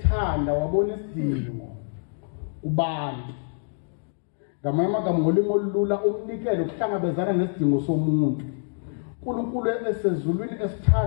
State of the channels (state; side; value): silent; right; digital silence